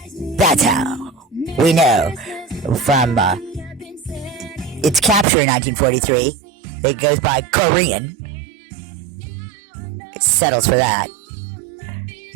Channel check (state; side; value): drops out; left; at 5.2 s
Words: That's how we know from its capture in 1943. It goes by Korean. It settles for that.